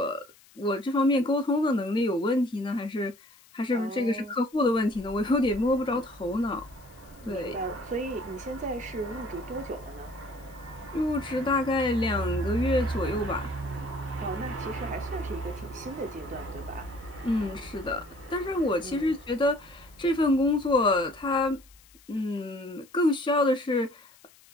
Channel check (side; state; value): left; noise; hiss, 27 dB below the sound